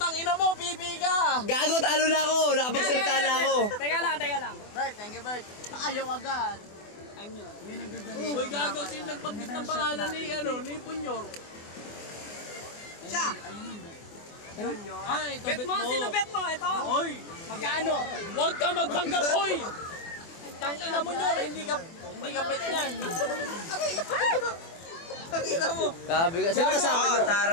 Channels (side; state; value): right; late; 24 ms